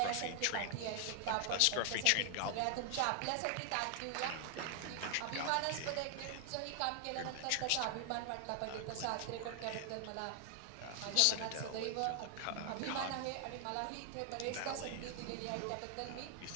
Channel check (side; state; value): both; different; correlation 0.00